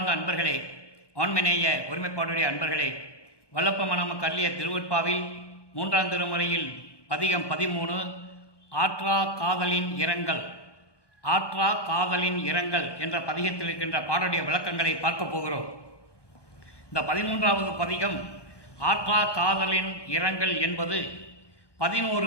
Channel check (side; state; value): right; late; 1.2 ms